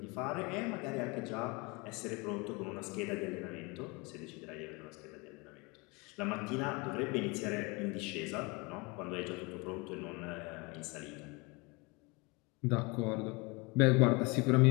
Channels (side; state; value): right; quieter; 27.6 dB